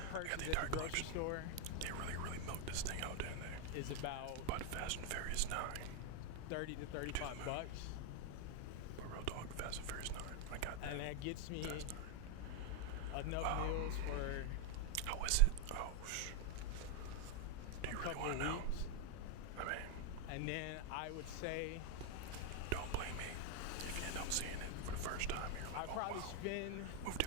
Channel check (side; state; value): both; different; correlation 0.01